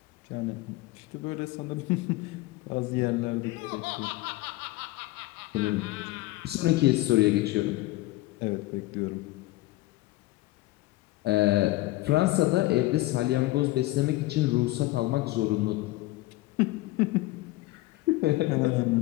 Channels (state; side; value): quieter; right; 18.5 dB